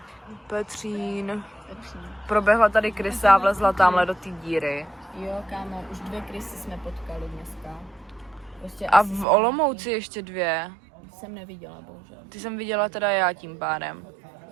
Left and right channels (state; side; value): drops out; left; at 9.2 s